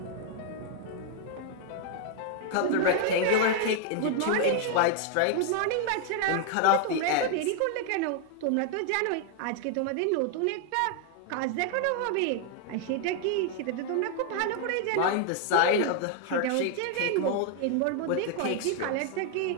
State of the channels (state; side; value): different; both; correlation 0.00